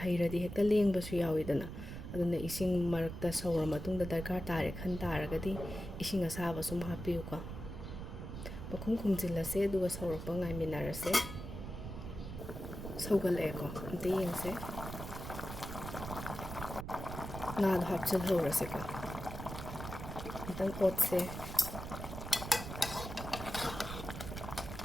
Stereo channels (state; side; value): noise; right; rumble, 8 dB below the sound